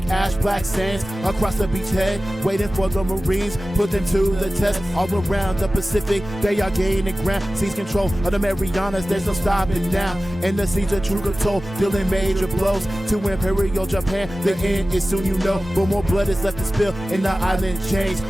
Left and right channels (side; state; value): both; normal; correlation 0.96